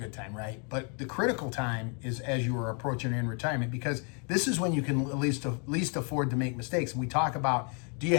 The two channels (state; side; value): quieter; right; 37.9 dB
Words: time, right? But the critical time is as you are approaching in retirement, because this is when you can at least afford to make mistakes. And we talk about, do you